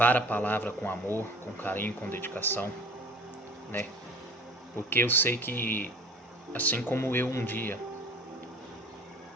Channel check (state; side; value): normal; both; correlation 0.44